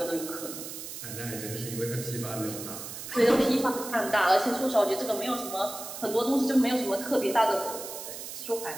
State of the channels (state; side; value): noise; right; hiss, 9 dB below the sound